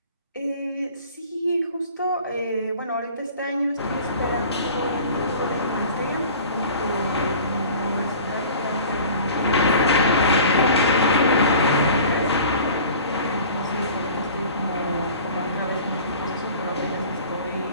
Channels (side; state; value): both; inverted; correlation -0.43